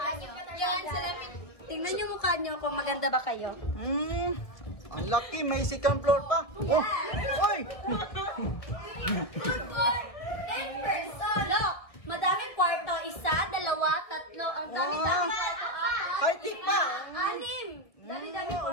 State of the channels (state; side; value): late; right; 1.7 ms